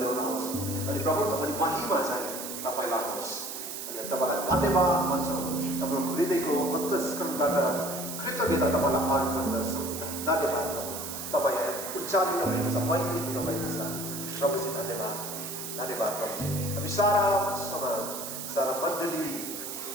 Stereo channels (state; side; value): noise; right; hiss, 7 dB below the sound